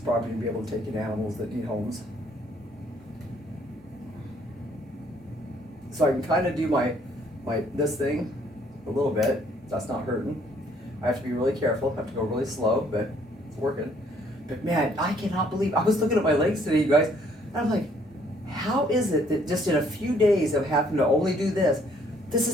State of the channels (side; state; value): both; normal; correlation 0.64